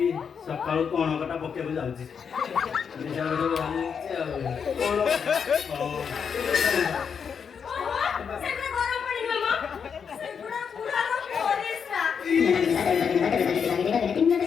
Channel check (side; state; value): right; quieter; 6.7 dB